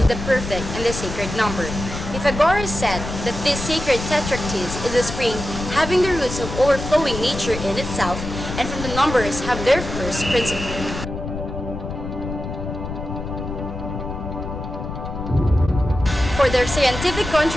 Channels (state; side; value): noise; left; rumble, 7 dB below the sound